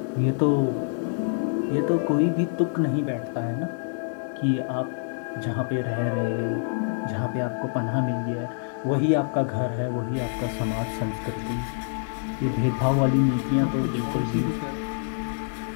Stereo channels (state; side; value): silent; right; 61 dB below the other